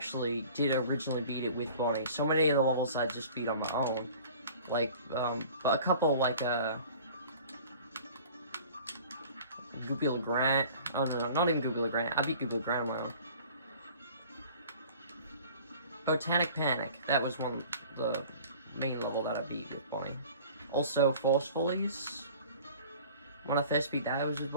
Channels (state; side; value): inverted; both; correlation -0.46